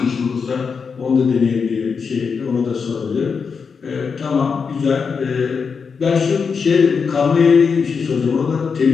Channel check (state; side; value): quieter; right; 5.7 dB